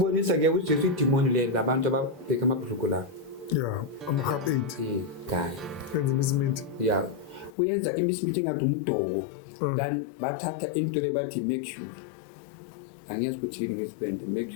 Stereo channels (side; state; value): right; drops out; at 7.5 s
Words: uJesu idimoni le labantu ababheka amabhuluko la ama-half 8 guy yenza imisiminti uyenza imisiminti engathi umdoko then bathatha into le bathi mercury angiyazi ukuthi yini ngesibende